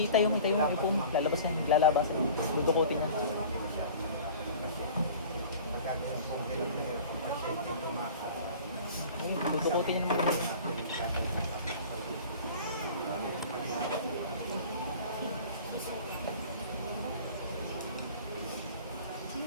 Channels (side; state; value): both; inverted; correlation -0.42